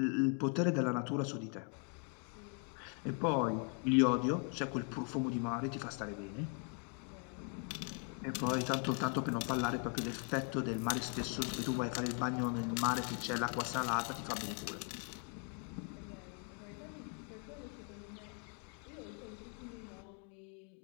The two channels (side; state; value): right; quieter; 38.4 dB